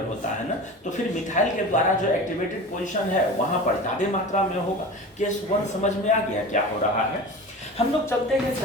होता है ना, तो फिर मिथाइल के द्वारा जो एक्टिवेटेड पोजीशन है वहां पर ज्यादा मात्रा में होगा। केस 1 समझ में आ गया क्या हो रहा है? हम लोग चलते हैं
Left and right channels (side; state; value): both; normal; correlation 0.33